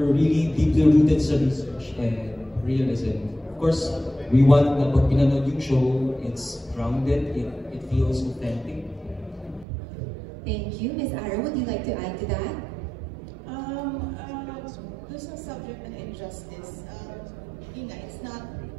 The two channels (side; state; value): left; drops out; at 9.7 s